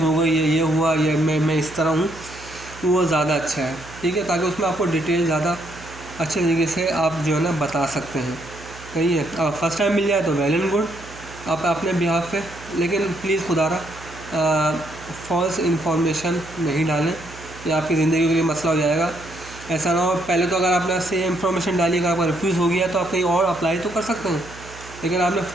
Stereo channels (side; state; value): right; noise; hum, 18 dB below the sound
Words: हो गई, ये हुआ, या मैं इस तरह हूँ, वो ज़्यादा अच्छा है, ठीक है, ताकि उसमें आपको डिटेल ज़्यादा अच्छे तरीके से आप जो है ना बता सकते हैं। सही है, फर्स्ट टाइम मिल जाए तो वेल एंड गुड आप अपने बिहाफ पे, लेकिन प्लीज़ खुदारा फॉल्स इन्फॉर्मेशन नहीं डालें, ये आपकी ज़िंदगी के लिए मसला हो जाएगा। ऐसा ना हो पहले तो अगर आपने सेम इन्फॉर्मेशन डाली, अगर आपका रिफ्यूज़ हो गया तो आप कहीं और अप्लाई तो कर सकते हैं, लेकिन आपने